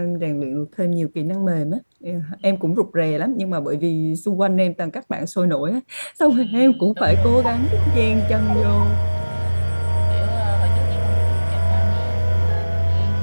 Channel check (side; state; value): both; inverted; correlation -1.00